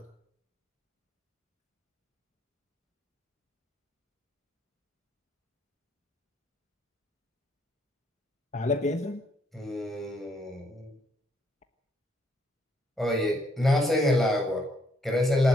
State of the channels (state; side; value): normal; both; correlation 0.70